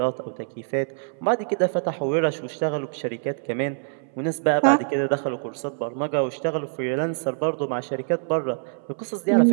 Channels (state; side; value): silent; left; 62 dB below the other